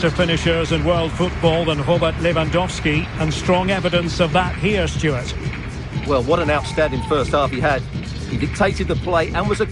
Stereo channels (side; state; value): both; identical; correlation 1.00